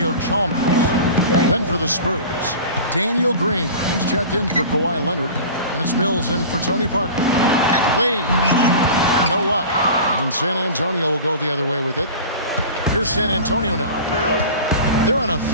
Chalmers. Then for the Spurs, Daniel Green. He's checked in for Kawhi Leonard. And it's Mills in for Tony Parker. Wade, no luck. And San Antonio will go the other way with it. Here's San Antonio now. They're on a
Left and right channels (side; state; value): both; inverted; correlation -0.36